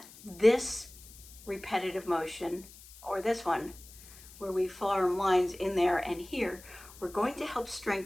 this repetitive motion, or this one, where we form lines in there and here, we're going to help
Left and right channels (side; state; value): left; noise; hiss, 19 dB below the sound